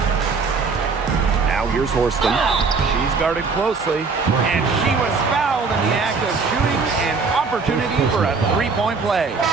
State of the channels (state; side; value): quieter; left; 4.7 dB